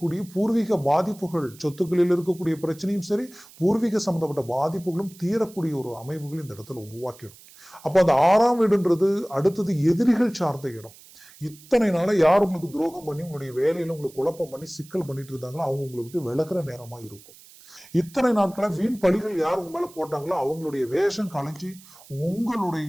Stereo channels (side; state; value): right; noise; hiss, 22 dB below the sound